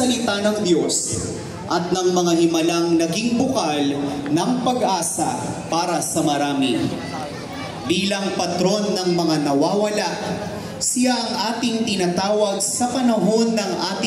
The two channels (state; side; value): identical; both; correlation 1.00